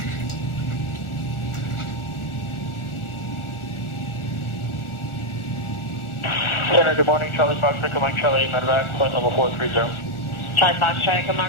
Center, good morning. Charlie Fox, Mike Charlie, medevac, flight level 430. Charlie Fox, Charlie,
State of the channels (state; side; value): late; right; 1.4 ms